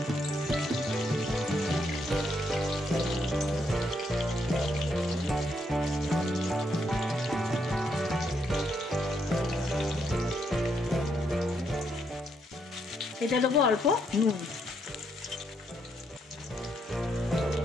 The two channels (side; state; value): both; normal; correlation 0.76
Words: এটা দেবো অল্প নুন।